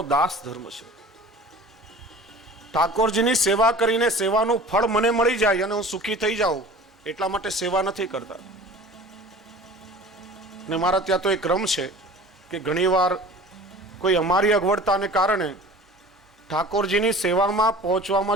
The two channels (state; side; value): normal; both; correlation 0.42